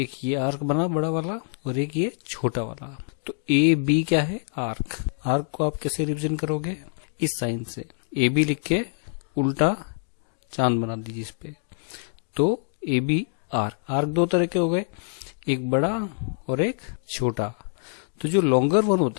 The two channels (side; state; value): right; silent; 59 dB below the other